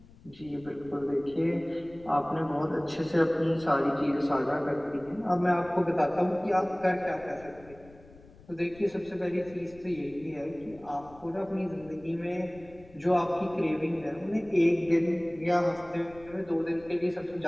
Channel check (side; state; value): left; noise; rumble, 23 dB below the sound